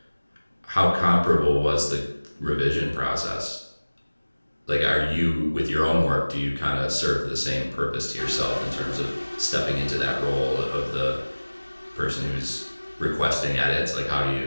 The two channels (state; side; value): inverted; both; correlation -1.00